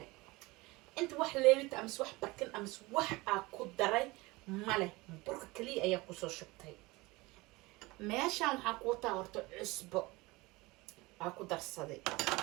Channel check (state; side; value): quieter; left; 22.4 dB